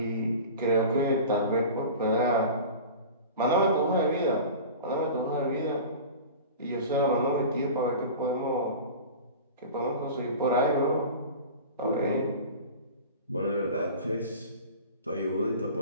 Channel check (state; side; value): inverted; both; correlation -0.35